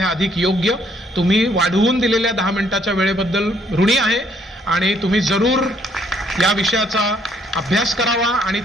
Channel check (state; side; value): normal; both; correlation 0.67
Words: अधिक योग्य. तुम्ही वाढवून दिलेल्या 10 मिनिटाच्या वेळेबद्दल ऋणी आहे आणि तुम्ही जरूर या विषयाचा अभ्यास करावा आणि